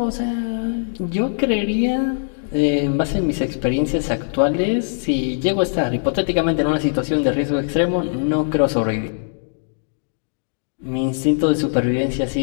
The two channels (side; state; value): right; silent; digital silence